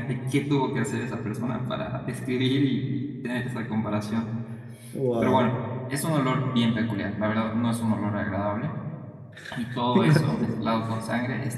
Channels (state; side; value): identical; both; correlation 1.00